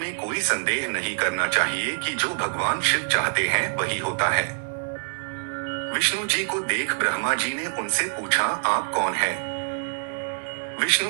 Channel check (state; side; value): silent; left; digital silence